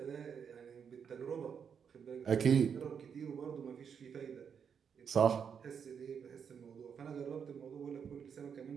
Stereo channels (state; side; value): quieter; left; 7.1 dB